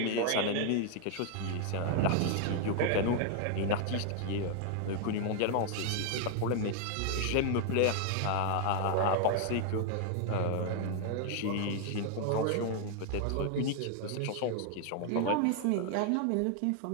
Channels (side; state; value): both; different; correlation 0.00